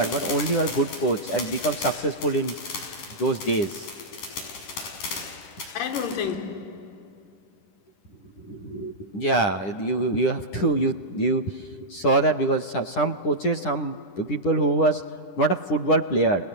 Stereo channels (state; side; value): late; right; 11 ms